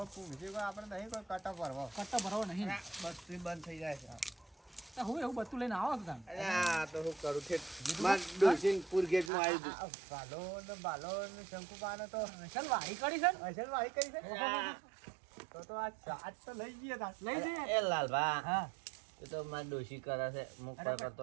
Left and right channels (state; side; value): drops out; left; at 9.3 s